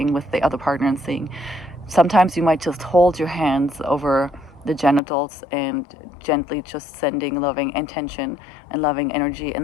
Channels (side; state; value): right; drops out; at 5.0 s